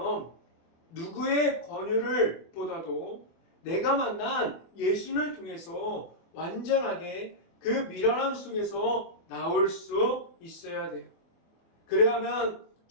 누구의 권유를 보다도 내가 만난 예수님을 통해서 완전하게 그 미련함 속에서 나올 수 있어야 돼요. 그래야만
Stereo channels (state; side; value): late; right; 24 ms